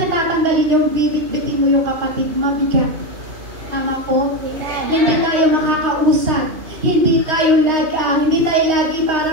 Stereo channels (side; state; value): left; late; 2.8 ms